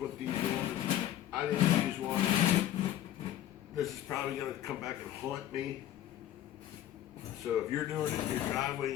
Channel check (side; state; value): right; quieter; 12.3 dB